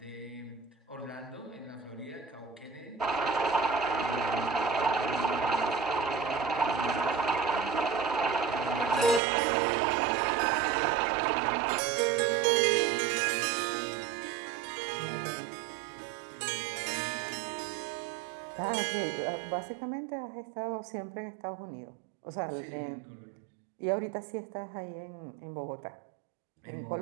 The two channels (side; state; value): left; drops out; at 9.2 s